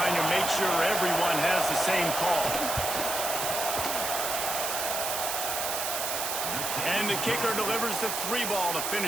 to make sure everyone has the same call. And the kicker delivers the 3 ball to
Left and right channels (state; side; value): noise; right; hiss, 1 dB below the sound